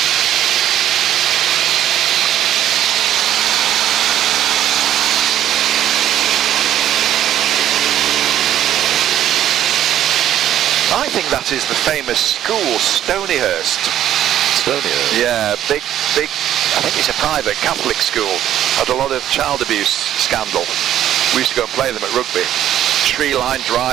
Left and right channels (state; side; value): quieter; left; 11.6 dB